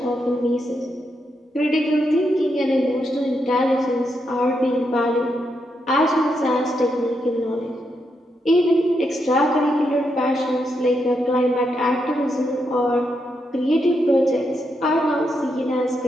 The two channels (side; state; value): both; normal; correlation 0.82